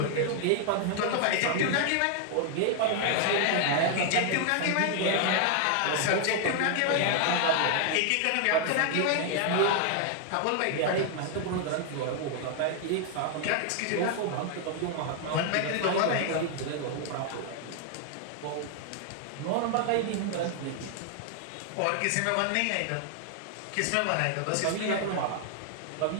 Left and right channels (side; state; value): both; different; correlation 0.00